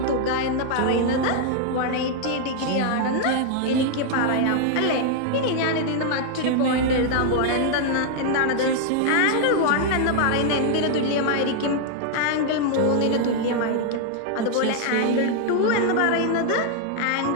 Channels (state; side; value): different; both; correlation 0.00